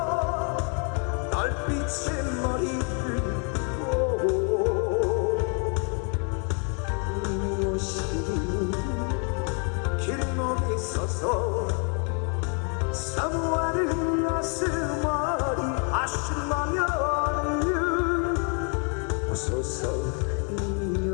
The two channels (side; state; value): right; quieter; 39.2 dB